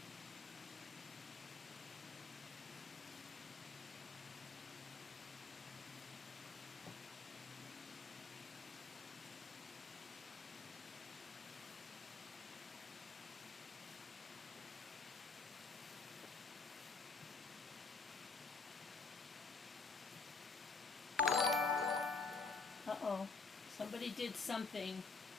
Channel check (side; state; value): right; quieter; 4.3 dB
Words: Uh-oh. Somebody did something.